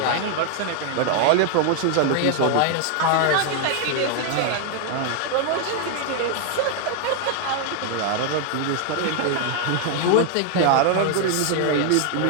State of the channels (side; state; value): both; different; correlation 0.00